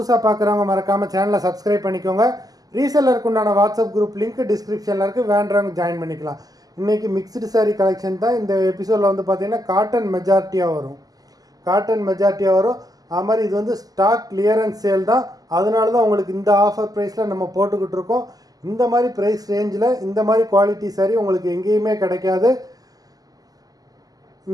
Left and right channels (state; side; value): late; left; 0.18 ms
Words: பார்க்குறவங்க மறக்காமல் சேனலை சப்ஸ்கிரைப் பண்ணிக்கோங்க. ரீசெல்லருக்கு உண்டான வாட்ஸ்அப் குரூப் லிங்க் டிஸ்கிரிப்ஷனில் இருக்குது, வேண்டுறவங்க ஜாயின் பண்ணிக்கலாம். இன்றைக்கி மிக்ஸ்டு சாரீ கலெக்ஷன் தான். இந்த எபிசோடில் வந்து பார்த்திங்கன்னா காட்டன் மெஜாரிட்டியாக வரும். அது மாதிரி இது வந்து ஸ்டாக் கிளியரன்ஸ் சேல் தான். அதனால தான் உங்களுக்கு இந்த ஆஃபர் ப்ரைஸில் நம்ம போட்டுக்கிட்டு இருக்கோம். இந்த மாதிரி ப்ரைஸ் ரேஞ்சில் இந்த மாதிரி குவாலிட்டி சாரீ உங்களுக்கு எங்கேயுமே கிடைக்காது.